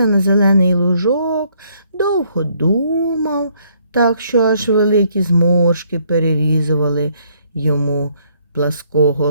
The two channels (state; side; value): inverted; both; correlation -0.68